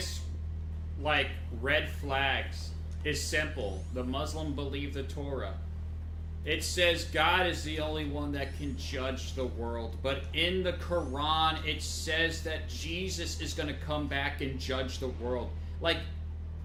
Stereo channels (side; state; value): both; identical; correlation 1.00